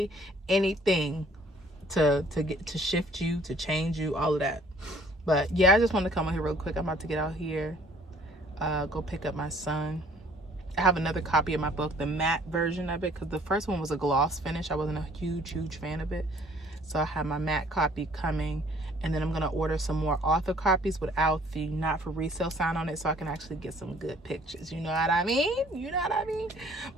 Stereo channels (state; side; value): normal; both; correlation 0.57